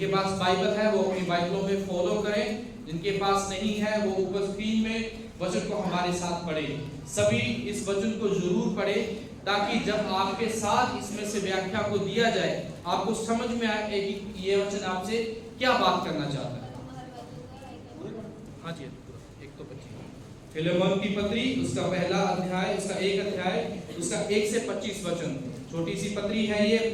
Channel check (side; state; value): both; identical; correlation 1.00